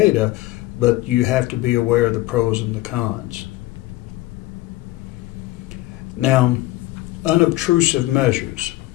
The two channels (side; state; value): right; quieter; 18.0 dB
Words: but you have to be aware of the pros and the cons. Now, unobtrusive measures.